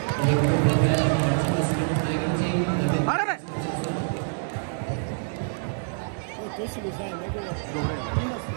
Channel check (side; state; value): left; silent; 61 dB below the other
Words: Аре, бе! Той си го знае, него. Добре. Има си.